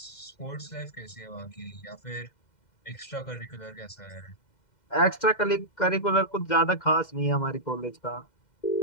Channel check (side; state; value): right; late; 2.0 ms